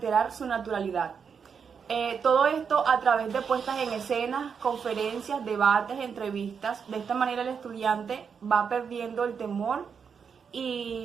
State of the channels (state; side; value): quieter; left; 6.5 dB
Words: su naturalidad. Todo esto a través de puestas en escenas, conferencias, debates, entrevistas. De esta manera el estudiante va perdiendo el temor